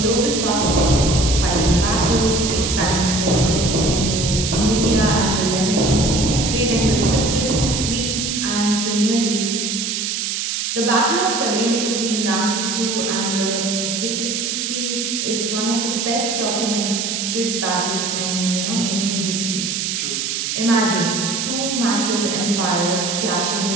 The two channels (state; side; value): noise; right; hiss, 1 dB below the sound